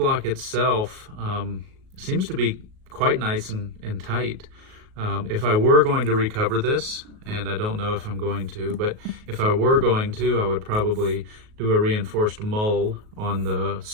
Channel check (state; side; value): late; left; 38 ms